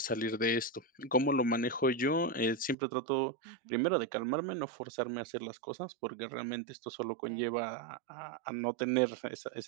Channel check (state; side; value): drops out; left; at 2.8 s